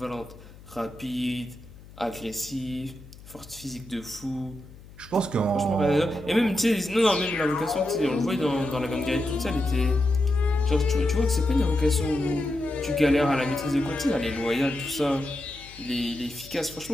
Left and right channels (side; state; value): left; noise; hum, 20 dB below the sound